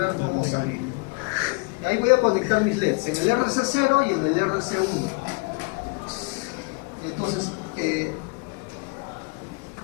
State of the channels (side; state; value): right; quieter; 30.3 dB